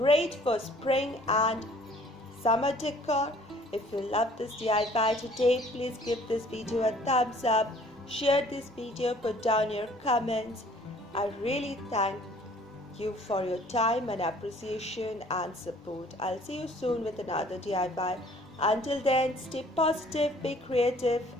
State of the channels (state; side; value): normal; both; correlation 0.55